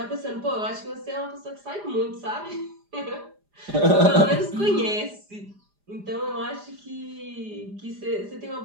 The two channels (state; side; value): late; left; 4.9 ms